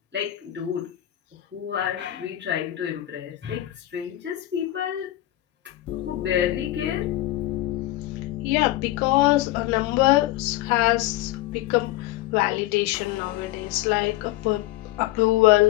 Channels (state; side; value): quieter; right; 15.5 dB